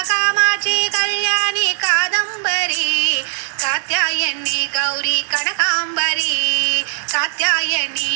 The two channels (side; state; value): left; silent; digital silence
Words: कामाक्षी कल्याणी कादंबरी कात्यायनी गौरी कनकांबरी